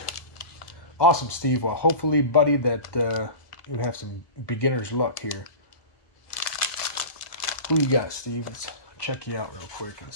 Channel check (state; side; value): late; right; 1.1 ms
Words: Awesome, Steve. Well, hopefully, buddy, that you have some beginner's luck here. Who you got, Steve? Let's check you out real quick and